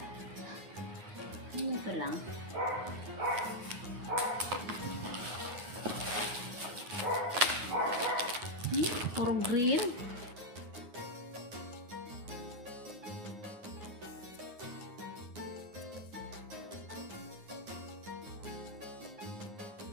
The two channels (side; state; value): left; late; 9.5 ms